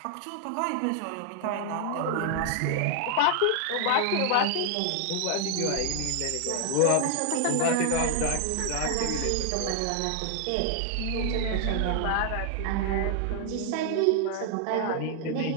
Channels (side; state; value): both; different; correlation 0.00